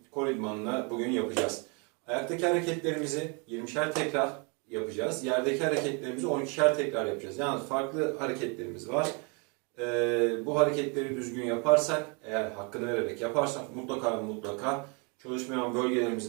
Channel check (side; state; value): left; quieter; 33.5 dB